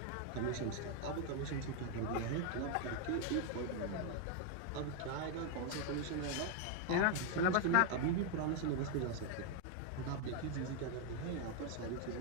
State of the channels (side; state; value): both; different; correlation 0.01